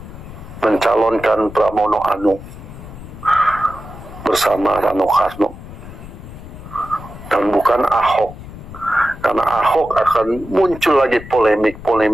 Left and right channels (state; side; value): noise; left; rumble, 14 dB below the sound